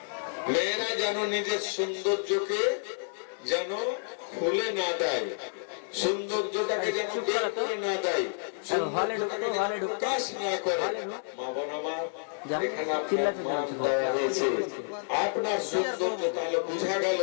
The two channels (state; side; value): silent; right; 58 dB below the other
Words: মেয়েরা যেন নিজের সৌন্দর্যকে যেন খুলে না দেয়, সৌন্দর্যটাকে যেন বের করে না দেয়, প্রকাশ না করে। মা বোন আমার, এখানে আপনার সৌন্দর্য তাহলে বোঝা গেল